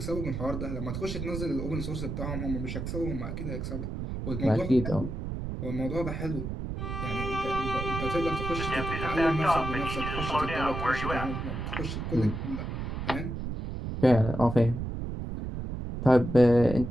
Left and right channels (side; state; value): right; noise; rumble, 5 dB below the sound